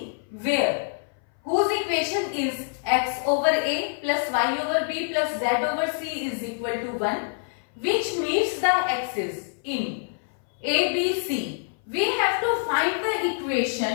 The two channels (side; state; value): right; silent; 58 dB below the other